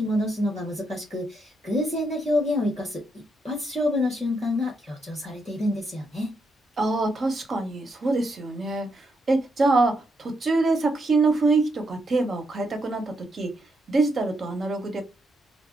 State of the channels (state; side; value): normal; both; correlation 0.79